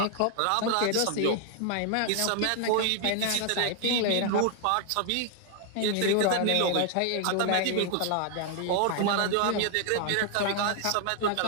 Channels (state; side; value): different; both; correlation 0.00